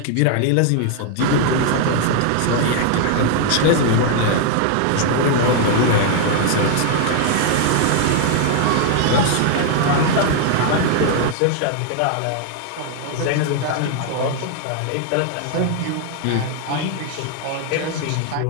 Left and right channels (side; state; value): both; different; correlation 0.00